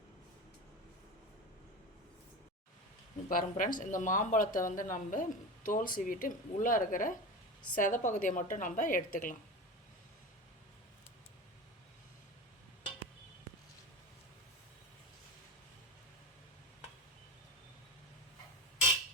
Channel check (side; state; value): both; normal; correlation 0.26